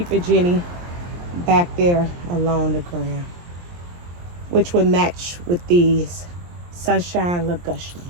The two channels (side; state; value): left; late; 23 ms